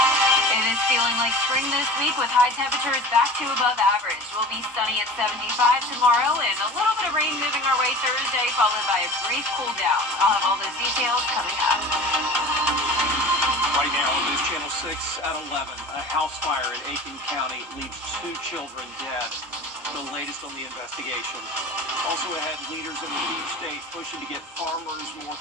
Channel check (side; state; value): both; normal; correlation 0.37